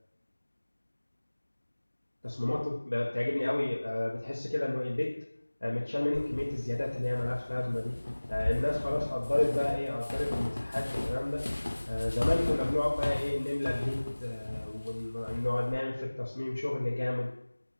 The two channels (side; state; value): both; inverted; correlation -1.00